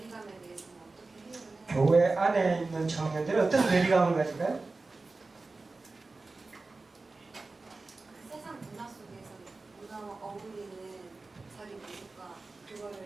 대해서는 어떻게 해결을 해요? 교회 안에 있는 청년들이 어떤 괴리감을 가질까요? 세상 문화 속에서 문화와 어울리는 자기 모습과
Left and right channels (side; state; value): left; quieter; 3.6 dB